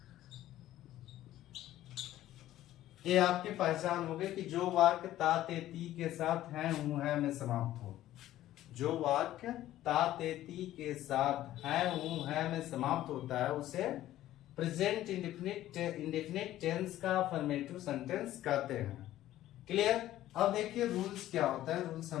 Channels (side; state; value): right; quieter; 13.9 dB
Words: ये आपकी पहचान हो गई कि जो वाक्य ता, ते, ती के साथ हैं, हूं, है में समाप्त हो। जो वाक्य ता, ते, ती के साथ है, हूं, है में समाप्त होता है, उसे प्रेजेंट इंडेफिनिट टेंस का अफर्मेटिव सेंटेंस कहते हैं। क्लियर। अब देखिए रूल्स क्या होता है, रूल्स